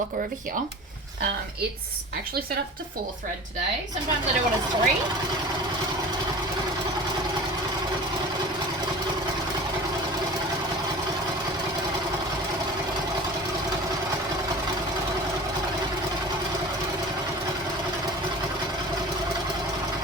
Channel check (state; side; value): normal; both; correlation 0.38